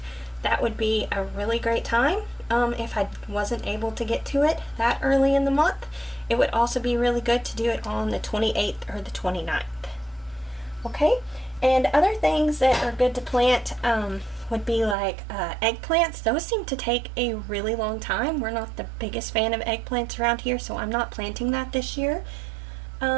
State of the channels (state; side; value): drops out; left; at 15.0 s